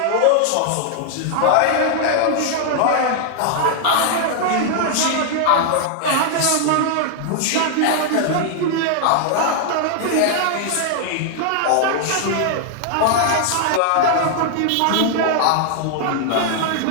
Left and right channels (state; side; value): different; both; correlation -0.01